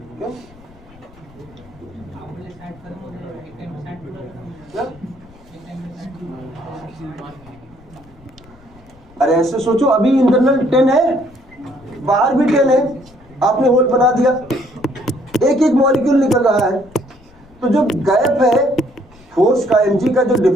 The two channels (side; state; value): left; noise; rumble, 26 dB below the sound